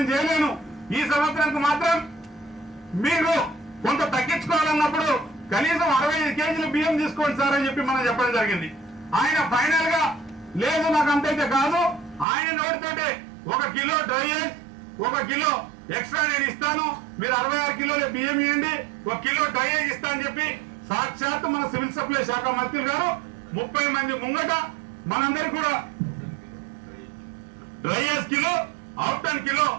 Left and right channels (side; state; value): left; drops out; at 12.2 s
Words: చేయలేను, ఈ సంవత్సరానికి మాత్రం మీరు కొంత తగ్గించుకోవాలన్నప్పుడు కనీసం 65 కేజీలు బియ్యం తీసుకోండి సార్ అని చెప్పి మనం చెప్పడం జరిగింది. ఆయన ఫైనల్ గా లేదు నాకు అంతైతే కాదు, ఆయన నోటితోటే 1 కిలో డ్రైయేజ్ 1 కిలో ఎక్స్ట్రా నేను ఇస్తాను, మీరు 66 కిలోల బియ్యం ఇవ్వండి, 1 కిలో డ్రైయేజ్ ఇస్తా అని చెప్పి సాక్షాత్ మన సివిల్ సప్లై శాఖ మంత్రులు గారు 30 మంది ముంగట మనందరూ కూడా డ్రైయేజ్ కిలో, అవుట్ కిలో